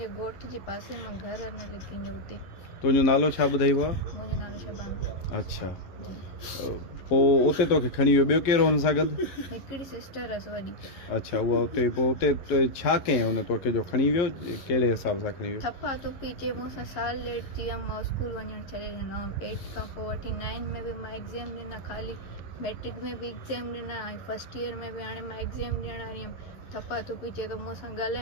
ॻोठ जे पासे मां घर न लिखींजो हुते। तुंहिंजो नालो छा ॿुधाइबो आहे? मुंहिंजो नालो शबाना। अच्छा, पोइ उते तोखे खणी वियो, ॿियो केरु हुन सां गॾु? हिकिड़ी सिस्टर हुअसि वॾी। अच्छा, उहा उते पोइ उते छा कयईं हुन तोखे जो खणी वियो? कहिड़े हिसाब सां खणी वियो? थप्पा तुपी चए मूंसां साल लेट थी वियमि, मां स्कूल वञणु छॾे ॾिनो। 8 खां पोइ वठी 9 में बि मां एग्ज़ाम ॾिना, ख़ाली मैट्रिक में बि एग्ज़ाम ॾिना ऐं फर्स्ट ईयर में बि हाणे मां एग्ज़ाम ॾियण वारी हुयमि। थप्पा तुपी चए थो मूंसां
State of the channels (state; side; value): late; right; 11 ms